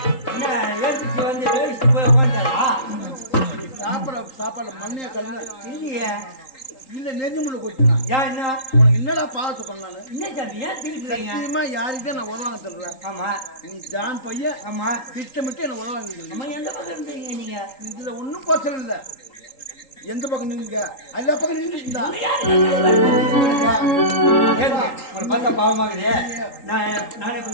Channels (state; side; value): late; right; 3.8 ms